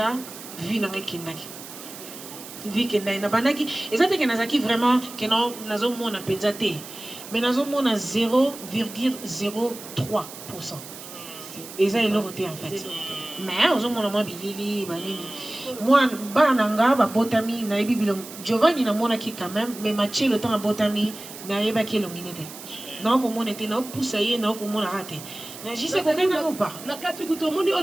vie na ngai kindaki. Vie kendai na bandaki ezate ke nazaki vraiment ke na nazo mona penza te. Mais nazo mona 0,03%. Et ça, il l'a voté en fait. Mais on a mon bilili, moi, bananga, botami, naibi bilong. Giovanni na mona qui quand même, mais matché le temps à botami, naïba qui l'onginete. Non, comme on était, non, poussaillé, non, comme on a raté. J'y sais qu'on n'a pas. La carte que tout le monde est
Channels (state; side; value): noise; right; hiss, 14 dB below the sound